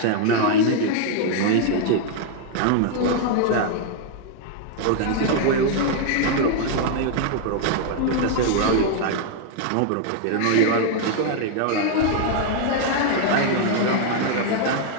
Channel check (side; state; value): both; different; correlation 0.00